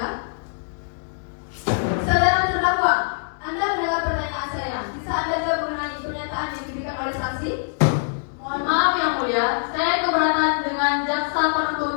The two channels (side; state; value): right; silent; digital silence